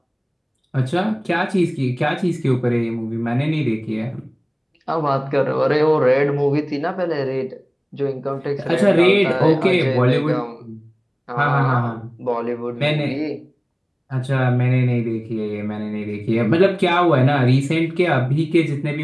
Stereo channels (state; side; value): identical; both; correlation 1.00